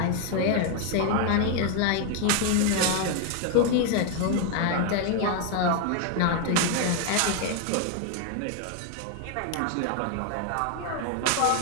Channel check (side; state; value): both; different; correlation 0.01